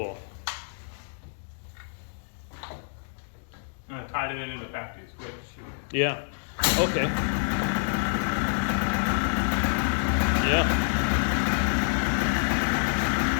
And I tied it in the factory switch. Yeah, okay. Yeah.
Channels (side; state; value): right; silent; digital silence